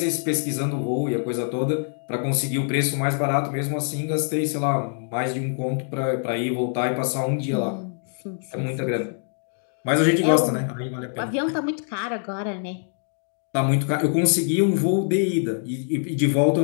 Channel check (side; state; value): right; silent; 62 dB below the other